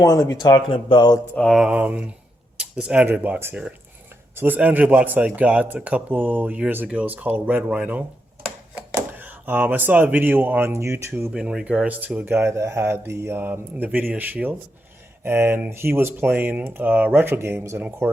to be talking about this Android box here. So this Android box I got a couple years ago is called Red Rhino. I saw a video on YouTube in regards to a guy that had the NVIDIA Shield, and he was playing retro games, and of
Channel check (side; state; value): both; normal; correlation 0.82